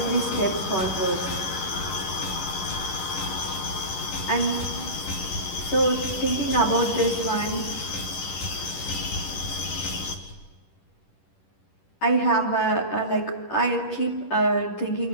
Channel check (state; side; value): late; right; 10 ms